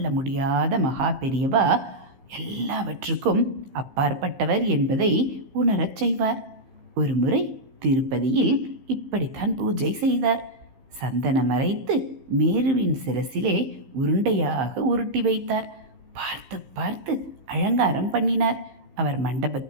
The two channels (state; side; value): late; left; 15 ms